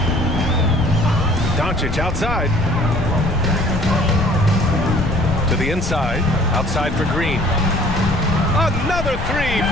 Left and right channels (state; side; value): noise; left; rumble, 6 dB below the sound